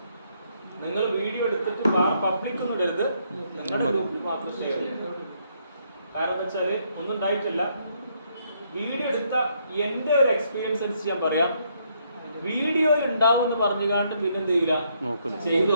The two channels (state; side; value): inverted; both; correlation -0.72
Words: നിങ്ങൾ വീഡിയോ എടുത്തിട്ട് പബ്ലിക് ഒന്നും ഇടരുത്, നിങ്ങളുടെ ഗ്രൂപ്പിൽ മാത്രം ഷെയർ ചെയ്യുക. കാരണം എന്താ വെച്ചാല് ഒന്നും ഉണ്ടായിട്ടില്ല. വീഡിയോ എടുത്ത എന്റെ ഒരു എക്സ്പീരിയൻസ് അനുസരിച്ച് ഞാൻ പറയാം, വീഡിയോയിൽ ഉണ്ടാവും എന്ന് പറഞ്ഞുകൊണ്ട് പിന്നെ എന്ത് ചെയ്യില്ല, ചെയ്തു